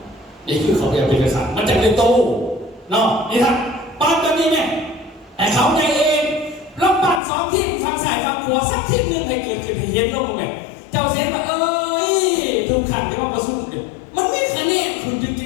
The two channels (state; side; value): drops out; right; at 7.2 s